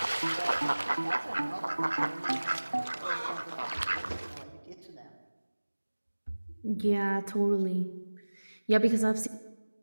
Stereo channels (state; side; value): inverted; both; correlation -1.00